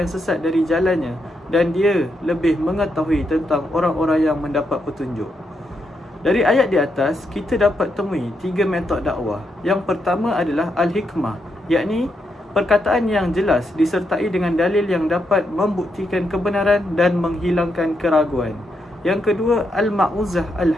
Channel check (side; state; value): both; normal; correlation 0.81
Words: yang sesat dari jalannya, dan dia lebih mengetahui tentang orang-orang yang mendapat petunjuk. Dari ayat di atas, kita dapat temui 3 metod dakwah. Yang pertama adalah al-hikmah, yakni perkataan yang jelas disertai dengan dalil yang dapat membuktikan kebenaran dan menghilangkan keraguan. Yang kedua, al-ma'uzah